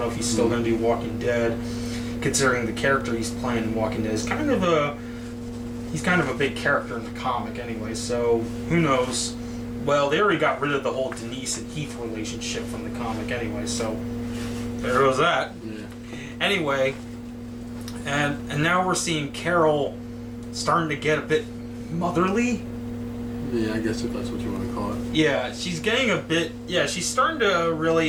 know if he's still going to do Walking Dead, considering the character he's playing in Walking Dead is kind of a big character in the comic anyway, so who knows. Well, they already got rid of the whole Denise and Heath relationship from the comic anyway, so there goes that. Yeah. Anyway, and now we're seeing Carol starting to get a bit motherly. Yeah, I guess if that's what you want to call it. Yeah, she's getting a bit, she's starting to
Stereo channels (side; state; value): both; identical; correlation 1.00